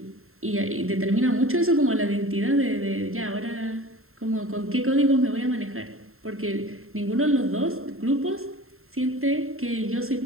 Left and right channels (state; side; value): late; left; 0.62 ms